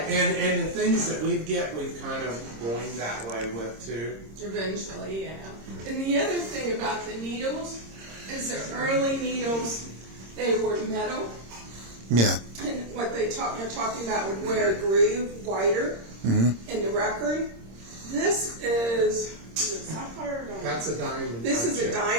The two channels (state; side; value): late; left; 26 ms